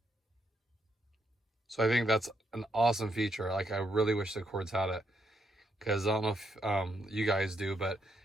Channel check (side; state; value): both; normal; correlation 0.78